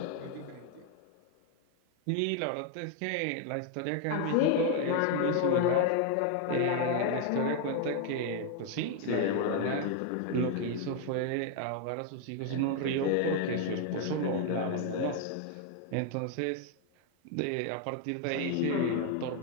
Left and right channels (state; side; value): different; both; correlation 0.00